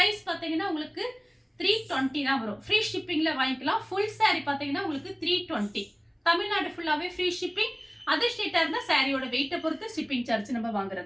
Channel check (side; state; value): both; identical; correlation 1.00